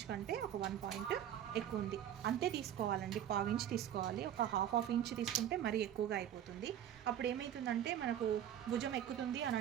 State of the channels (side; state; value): left; quieter; 10.4 dB